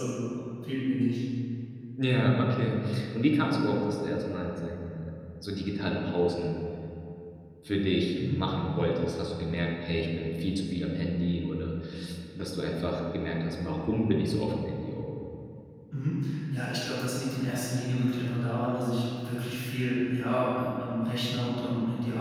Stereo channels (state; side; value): identical; both; correlation 1.00